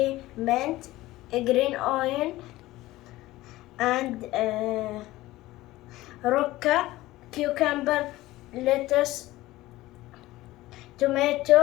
mint, green onion, and roca, cucumber, lettuce,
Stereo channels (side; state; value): right; quieter; 17.5 dB